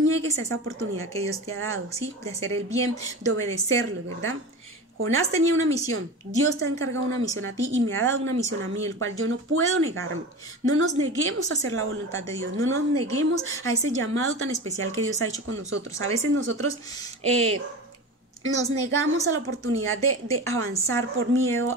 a esa oportunidad que Dios te ha dado, ¿sí? De hacer el bien, de obedecerlo, ¿verdad? Jonás tenía una misión, Dios te ha encargado una misión a ti y me ha dado una misión a mí, el cual yo no puedo negarme. No nos neguemos a hacer la voluntad de Dios, no nos neguemos a ese llamado tan especial que Dios ha hecho con nosotros. A veces nosotros nos negamos a la oportunidad de avanzar por miedo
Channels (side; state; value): both; normal; correlation 0.29